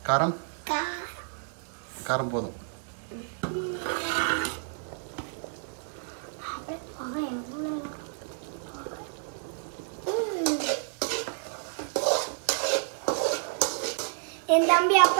காரம் காரம் போதும். என் தம்பி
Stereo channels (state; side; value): silent; left; 55 dB below the other